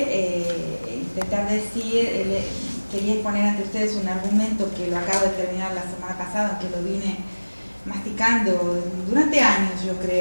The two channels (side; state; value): both; inverted; correlation -1.00